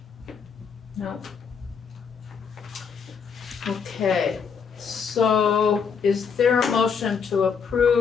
No? Okay, so is there a motion to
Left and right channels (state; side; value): quieter; right; 6.2 dB